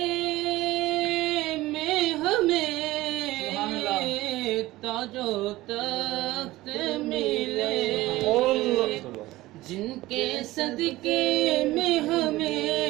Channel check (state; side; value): quieter; left; 17.9 dB